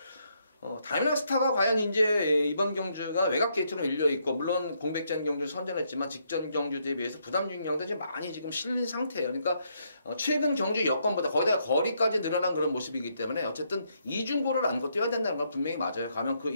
다이나믹 스타가 과연 이제 이번 경주가 외곽 게이트로 밀려 있고 물론 공백전 경주 선전했지만 직전 경주에 비해서 부담 중량도 이제 많이 지금 실린 상태예요. 그러니까 최근 경주 여건보다 거기다가 거리까지 늘어난 그런 모습이기 때문에 어쨌든 이중고를 안고 뛰어야 된다는 건 분명히 맞아요. 가면 그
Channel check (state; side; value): inverted; both; correlation -0.75